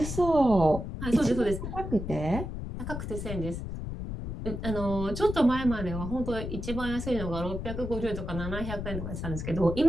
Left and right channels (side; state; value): left; noise; rumble, 6 dB below the sound